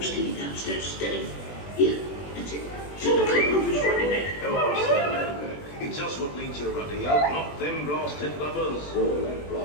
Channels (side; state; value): right; late; 20 ms